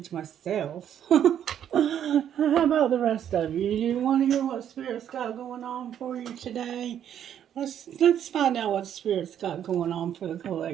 myself. How about the rest of you? You want to hear what Spirit's got going on for you today? Let's find out what Spirit's got going on for the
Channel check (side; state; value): left; quieter; 9.8 dB